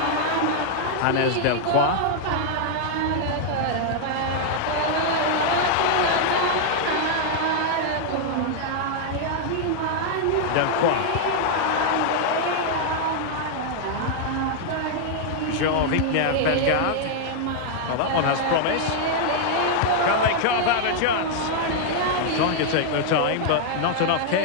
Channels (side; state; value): both; different; correlation -0.01